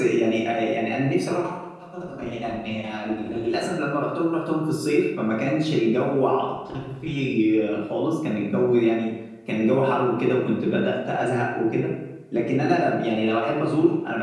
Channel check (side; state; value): both; identical; correlation 1.00